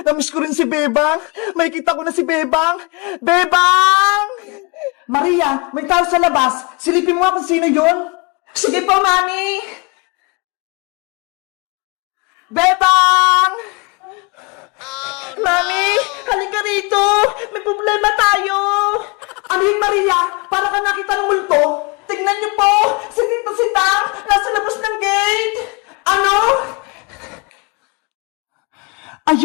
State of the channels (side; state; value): right; quieter; 29.8 dB